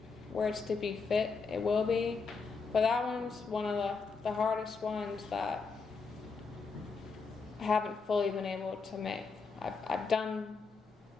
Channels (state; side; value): quieter; right; 4.7 dB